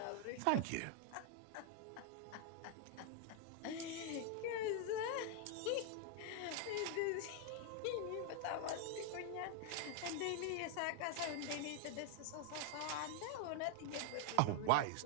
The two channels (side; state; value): both; different; correlation 0.00